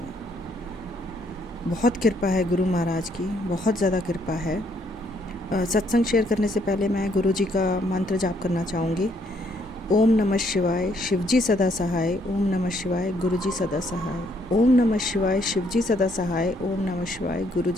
बहुत कृपा है गुरु महाराज की, बहुत ज़्यादा कृपा है। सत्संग शेयर करने से पहले मैं गुरु जी का मंत्र जाप करना चाहूँगी। ओम नमः शिवाय, शिवजी सदा सहाय। ओम नमः शिवाय, गुरु जी सदा सहाय। ओम नमः शिवाय, शिवजी सदा सहाय। ओम नमः शिवाय, गुरु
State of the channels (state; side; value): normal; both; correlation 0.69